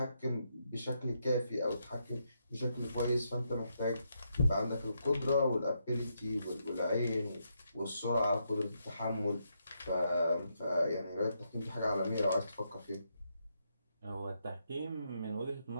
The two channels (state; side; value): inverted; both; correlation -0.79